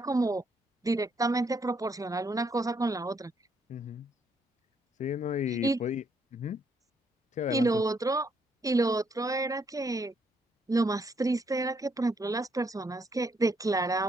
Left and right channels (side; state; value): both; normal; correlation 0.72